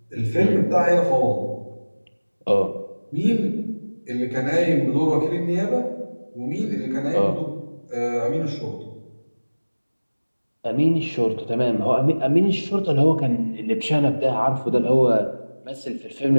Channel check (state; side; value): inverted; both; correlation -1.00